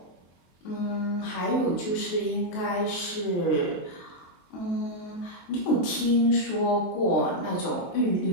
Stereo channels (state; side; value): late; right; 23 ms